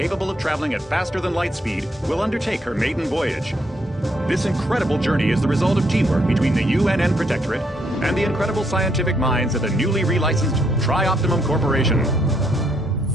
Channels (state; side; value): normal; both; correlation 0.73